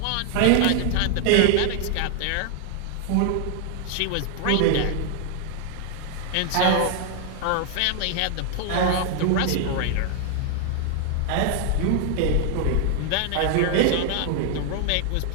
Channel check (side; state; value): both; different; correlation 0.00